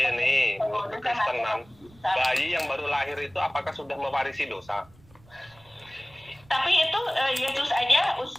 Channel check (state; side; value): noise; right; rumble, 27 dB below the sound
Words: nih, menurut Kristenan, bayi yang baru lahir itu apakah sudah mewarisi dosa? Tapi itu Yesus aja